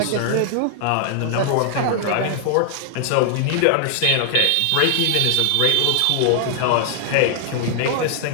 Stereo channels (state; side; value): different; both; correlation 0.00